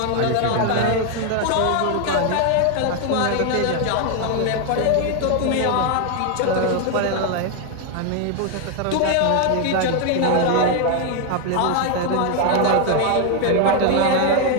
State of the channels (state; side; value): different; both; correlation 0.01